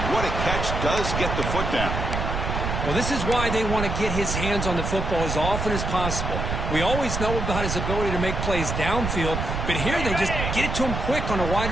What a catch. Does get the foot down. Well, this is why they want to get his hands on the football as often as possible. We always know about his ability to make plays downfield, but here they just get it to him quick on a wide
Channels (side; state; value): right; noise; rumble, 2 dB below the sound